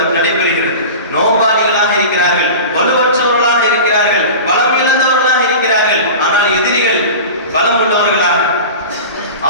நடைபெறுகிறது. நோம்பாளிகளாக இருக்கிறார்கள், வலுவற்றவர்களாக இருக்கிறார்கள், பலம் இழந்தவர்களாக இருக்கிறார்கள். ஆனால் எதிரிகள் பலம் உள்ளவர்களாக,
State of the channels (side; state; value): both; inverted; correlation -0.33